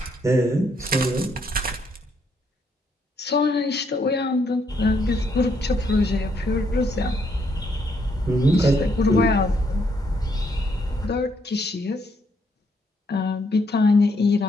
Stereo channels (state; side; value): normal; both; correlation 0.73